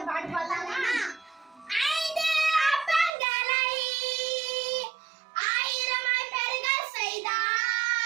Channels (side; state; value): left; drops out; at 3.1 s